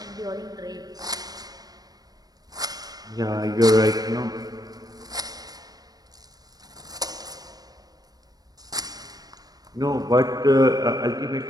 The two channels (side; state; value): left; late; 0.19 ms